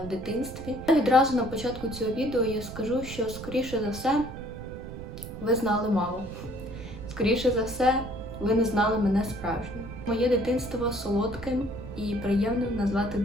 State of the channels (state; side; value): noise; right; rumble, 11 dB below the sound